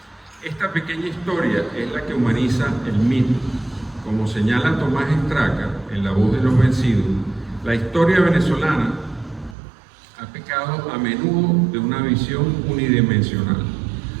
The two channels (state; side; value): drops out; left; at 9.6 s